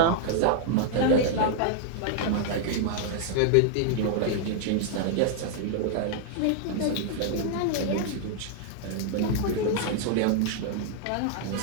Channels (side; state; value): both; different; correlation -0.01